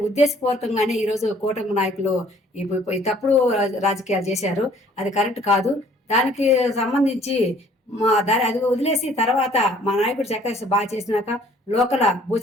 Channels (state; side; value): normal; both; correlation 0.57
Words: ఉద్దేశపూర్వకంగానే ఈరోజు కూటమి నాయకులు ఈ తప్పుడు రాజకీయాలు చేశారు. అది కరెక్ట్ కాదు. దానికి సంబంధించి అది వదిలేసి తర్వాత మా నాయకుడు చక్కగా బాగా చేసినాక లోకల